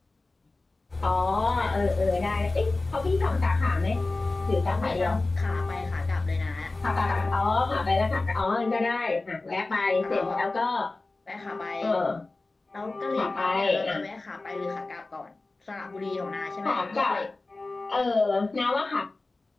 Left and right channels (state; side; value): quieter; right; 3.3 dB